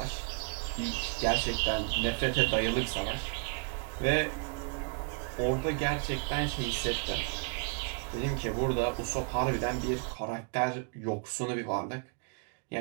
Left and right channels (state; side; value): quieter; left; 32.8 dB